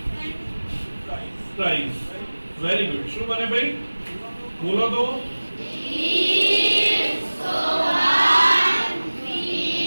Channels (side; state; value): both; inverted; correlation -1.00